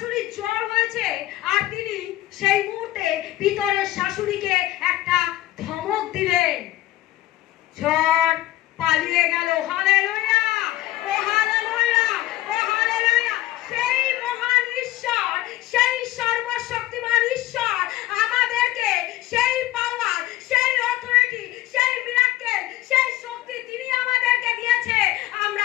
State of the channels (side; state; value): right; quieter; 15.6 dB